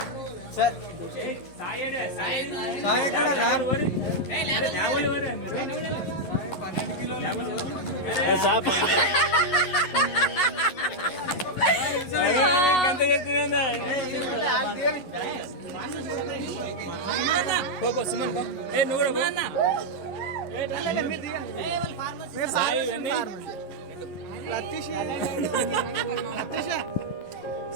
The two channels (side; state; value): right; late; 11 ms